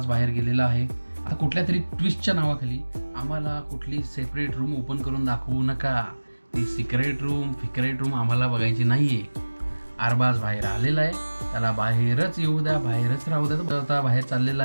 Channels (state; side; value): inverted; both; correlation -1.00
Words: बाहेर गेलेला आहे. आता कुठल्या तरी ट्विस्टच्या नावाखाली आम्हाला कुठली सेपरेट रूम ओपन करून दाखवू नका. ती सिक्रेट रूम आम्हाला बघायची नाही आहे. अरबाज बाहेर आलेला आहे, त्याला बाहेरच येऊ द्या, बाहेरच राहू द्या. तर आता बाहेर चाललेला